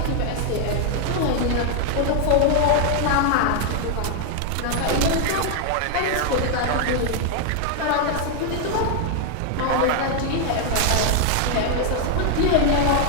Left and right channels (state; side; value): different; both; correlation 0.00